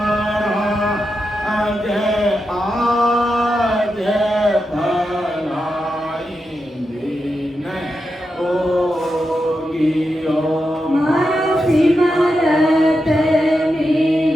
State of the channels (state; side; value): normal; both; correlation 0.88